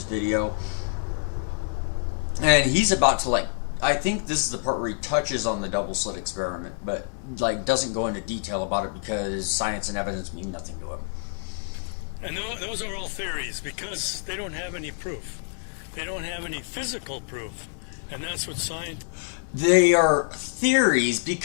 video. And he's about to, like, I think this is the part where he touches on the double slit experiment, but like doesn't go into detail about it because science and evidence mean nothing to him. And those are all theories, because they don't have any proof. They don't have any physical proof. And that's what science... They are theories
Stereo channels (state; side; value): silent; right; digital silence